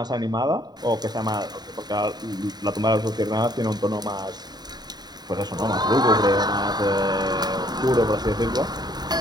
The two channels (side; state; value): left; late; 0.20 ms